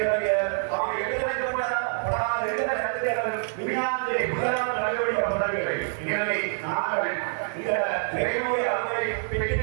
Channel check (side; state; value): left; silent; digital silence